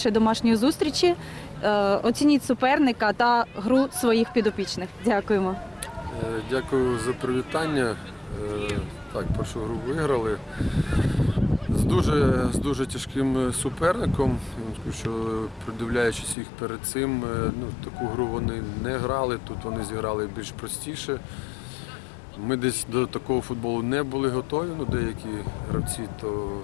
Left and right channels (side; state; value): right; drops out; at 16.4 s